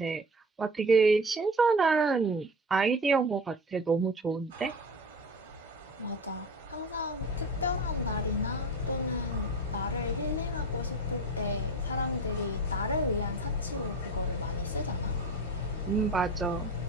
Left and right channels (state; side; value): normal; both; correlation 0.31